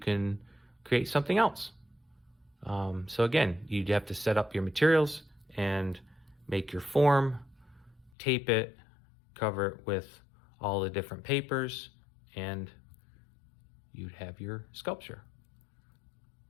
create something else. So again, you'd have to set up your materials and make your form, tape it, cover it with all the different papers, and you'd have your sculpture.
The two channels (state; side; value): drops out; right; at 8.1 s